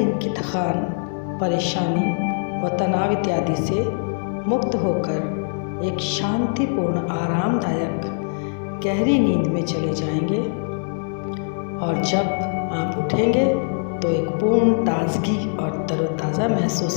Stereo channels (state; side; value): silent; right; digital silence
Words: की थकान, परेशानी व तनाव इत्यादि से मुक्त होकर एक शांतिपूर्ण आरामदायक गहरी नींद में चले जाएंगे और जब आप उठेंगे तो एक पूर्ण ताजगी और तरोताज़ा महसूस